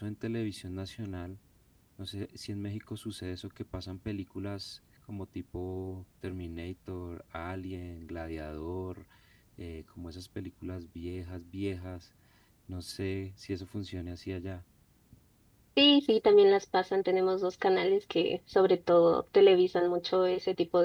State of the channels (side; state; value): both; identical; correlation 1.00